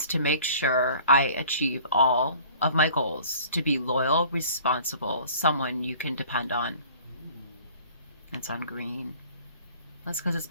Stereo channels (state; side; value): inverted; both; correlation -0.49